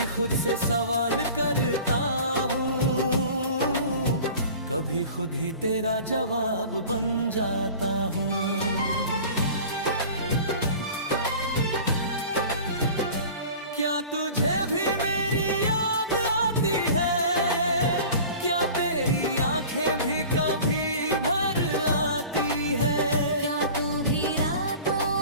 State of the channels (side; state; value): both; inverted; correlation -0.41